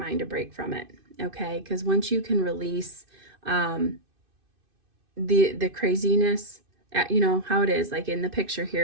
a break from it. Okay. Because once you can release, the craziness, you know how it is, like in the picture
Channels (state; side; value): late; left; 2.6 ms